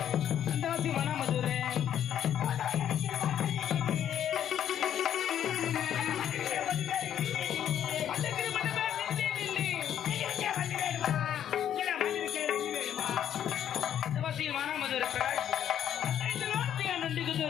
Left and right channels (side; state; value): right; quieter; 10.1 dB